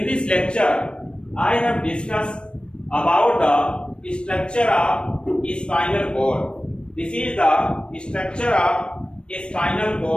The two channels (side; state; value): right; late; 0.056 ms